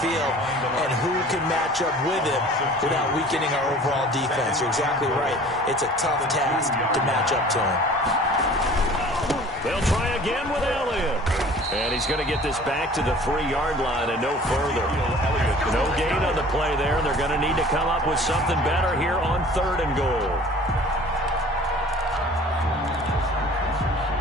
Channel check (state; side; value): normal; both; correlation 0.47